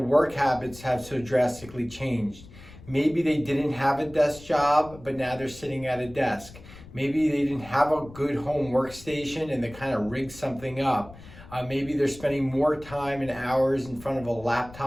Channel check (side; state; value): left; noise; rumble, 19 dB below the sound